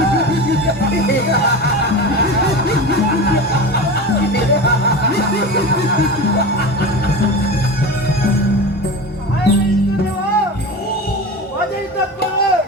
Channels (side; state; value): both; normal; correlation 0.28